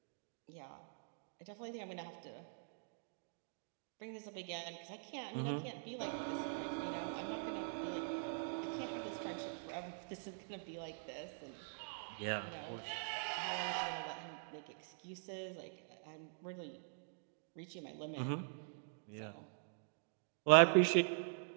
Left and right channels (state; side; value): silent; left; digital silence